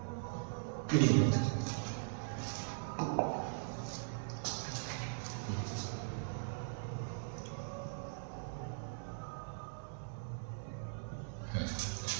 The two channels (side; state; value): left; silent; 51 dB below the other